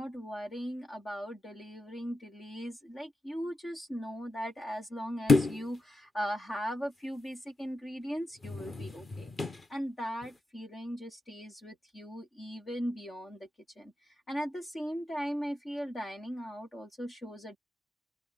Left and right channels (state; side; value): normal; both; correlation 0.89